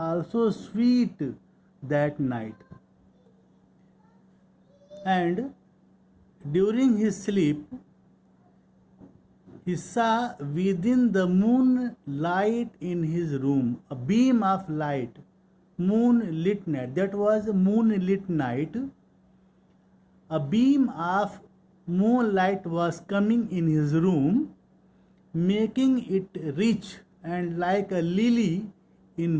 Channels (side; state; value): both; identical; correlation 1.00